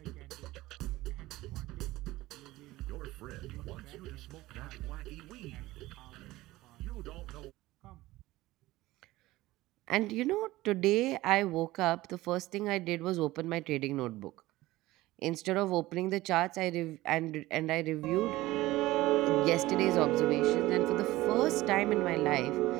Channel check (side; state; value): left; quieter; 17.9 dB